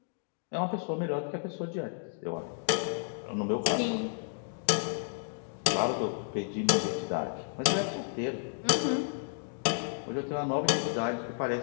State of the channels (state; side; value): silent; right; digital silence